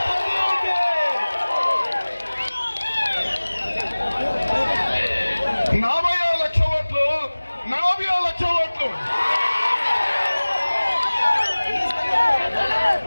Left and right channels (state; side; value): inverted; both; correlation -1.00